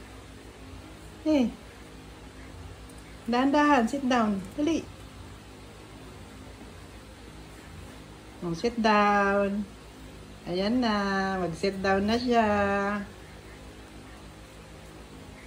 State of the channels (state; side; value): identical; both; correlation 1.00